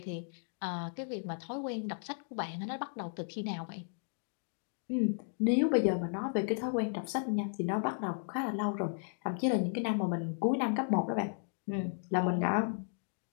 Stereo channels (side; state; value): right; silent; 55 dB below the other